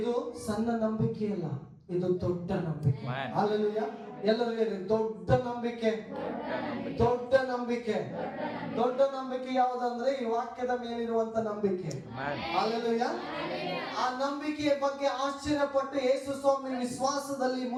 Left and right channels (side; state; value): both; identical; correlation 1.00